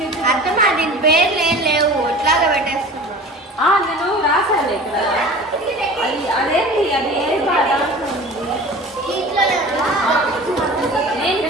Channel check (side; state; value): both; normal; correlation 0.39